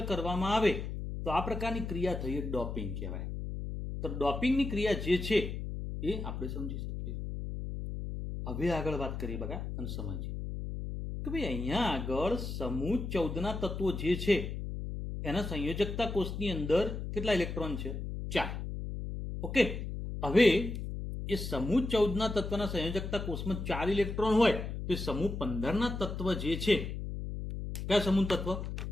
કરવામાં આવે તો આ પ્રકારની ક્રિયા થઈ ડોપિંગ કહેવાય. તો ડોપિંગની ક્રિયા જે છે એ આપણે સમજી શકીએ. હવે આગળ વાત કરીએ બગા અને સમજીએ કે ભાઈ અહીંયા આગળ સમૂહ 14ના તત્વો જે છે એના સંયોજકતા કોષની અંદર કેટલા ઇલેક્ટ્રોન છે? 4. ઓકે, હવે એ સમૂહ 14ના તત્વના સંયોજકતા કોષમાં 4 ઇલેક્ટ્રોન હોય તો એ સમૂહ 15ના તત્વ જે છે, કયા સમૂહ તત્વ?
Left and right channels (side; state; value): left; noise; hum, 5 dB below the sound